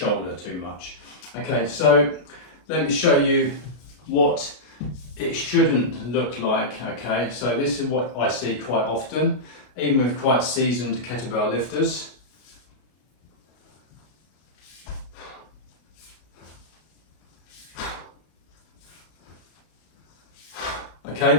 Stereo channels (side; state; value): right; late; 33 ms